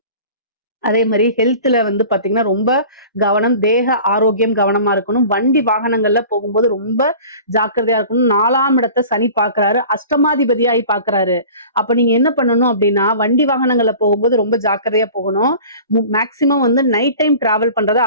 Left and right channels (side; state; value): both; inverted; correlation -0.42